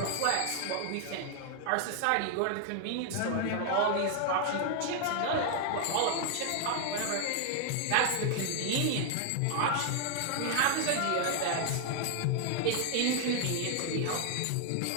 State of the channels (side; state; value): both; different; correlation 0.00